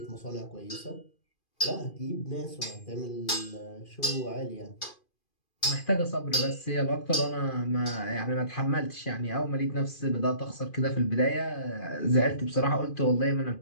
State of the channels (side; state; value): right; late; 2.4 ms